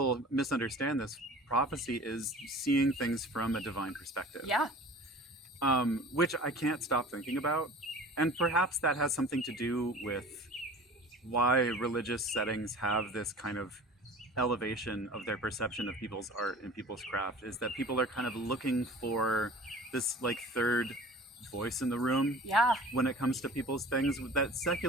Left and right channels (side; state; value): both; normal; correlation 0.43